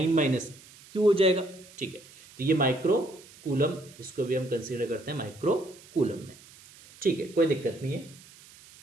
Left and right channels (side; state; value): right; noise; hiss, 22 dB below the sound